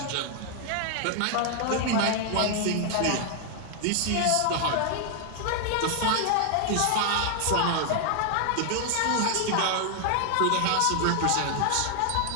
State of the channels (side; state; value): both; different; correlation 0.00